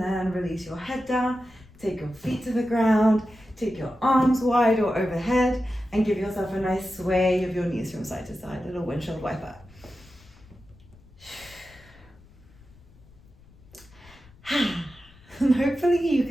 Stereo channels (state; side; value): noise; left; rumble, 25 dB below the sound